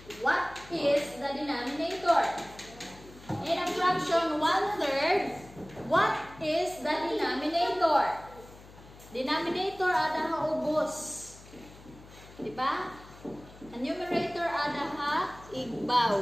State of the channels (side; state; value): left; noise; hum, 20 dB below the sound